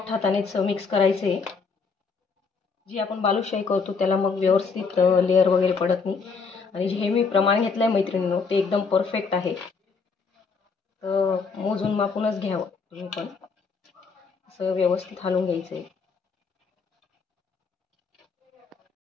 हातानेच मिक्स करायचं आहे. जी आपण बालुशाही करतो त्याला मग व्यवस्थित लेअर वगैरे पडत नाही. आणि जे मी प्रमाण घेतलं आहे मैत्रिणींनो ते एकदम परफेक्ट आहे. तर मोजून मापूनच घ्यावं तुम्ही पण. असं व्यवस्थित हलवून घ्यायचं आहे.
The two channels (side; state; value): right; quieter; 5.0 dB